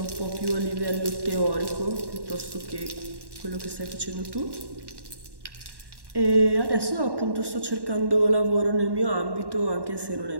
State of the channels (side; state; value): left; late; 1.1 ms